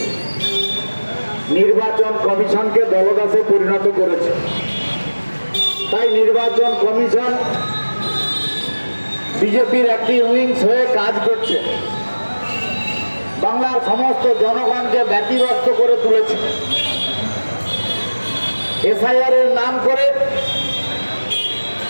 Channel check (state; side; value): inverted; both; correlation -1.00